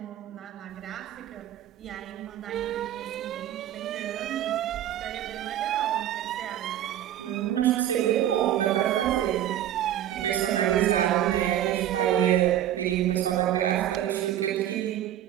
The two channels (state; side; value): quieter; left; 11.8 dB